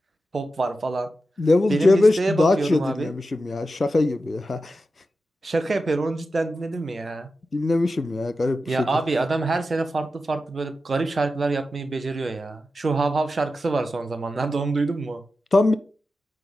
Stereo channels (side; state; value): both; normal; correlation 0.91